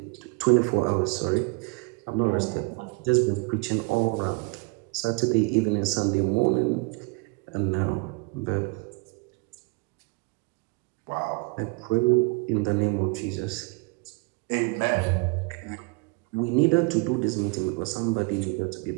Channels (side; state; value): left; quieter; 28.7 dB